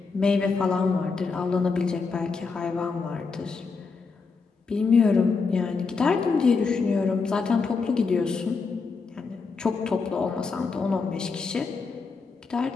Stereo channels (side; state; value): right; quieter; 4.7 dB